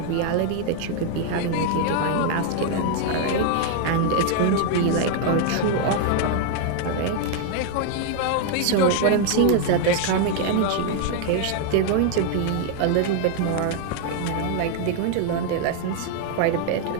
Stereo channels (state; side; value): different; both; correlation 0.00